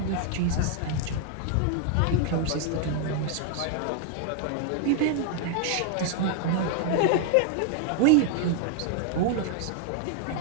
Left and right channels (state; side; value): different; both; correlation 0.00